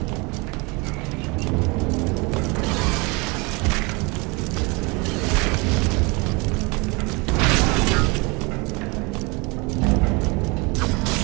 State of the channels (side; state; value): left; quieter; 27.9 dB